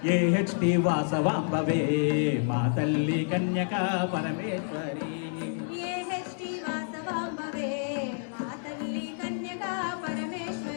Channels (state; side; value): silent; right; 59 dB below the other